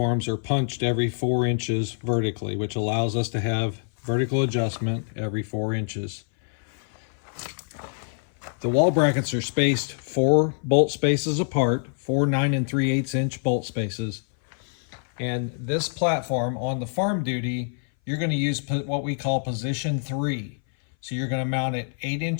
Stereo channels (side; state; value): right; silent; 59 dB below the other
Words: are punched every 4 inches vertically, which allows us to have vertical adjustment every 4 inches. The wall brackets are spaced 4 bolt spaces apart, 4 9 3/8 inch bolt spaces. And this platform on the farm duty, you're going to use what we call position 3. So you're going to mount it 8